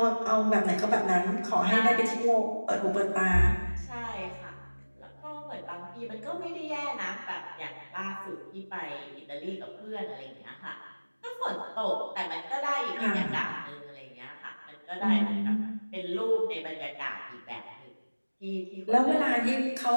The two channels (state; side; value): inverted; both; correlation -1.00